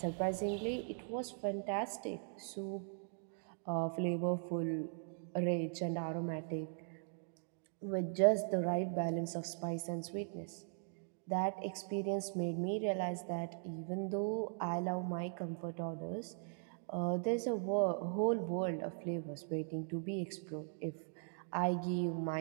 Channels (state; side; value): silent; left; digital silence